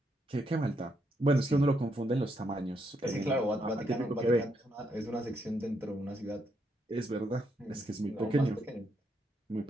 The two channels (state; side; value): normal; both; correlation 0.77